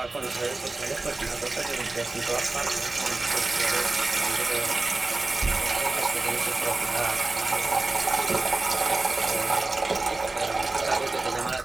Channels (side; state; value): left; quieter; 3.3 dB